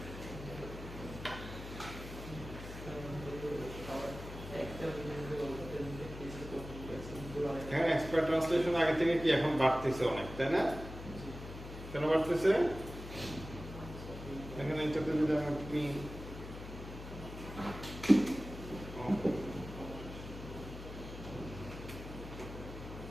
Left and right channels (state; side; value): noise; left; hum, 11 dB below the sound